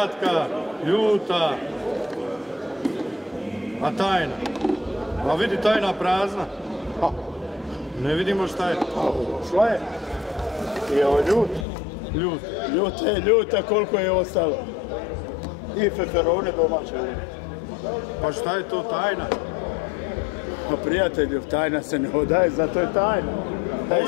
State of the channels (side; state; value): right; drops out; at 11.7 s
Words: ljuta. A tajna? A vidi tajna prazna. Ne vidimo šta je. Šta je? I ovo ljut. Ljut. Ljuta, koliko je ostalo? I feferone domaće. Pa šta je to tajna? Pa prijatelju, tajna se ne odaje, zato je tajna.